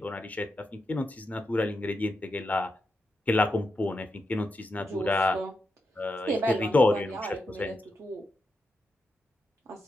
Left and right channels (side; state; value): both; normal; correlation 0.86